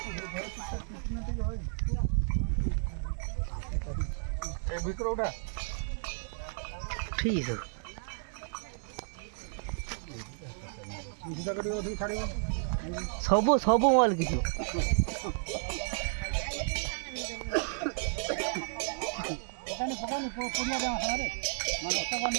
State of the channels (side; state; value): left; silent; 56 dB below the other